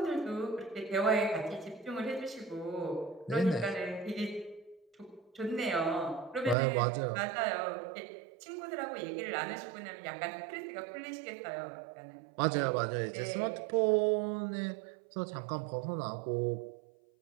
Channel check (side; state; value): left; drops out; at 6.6 s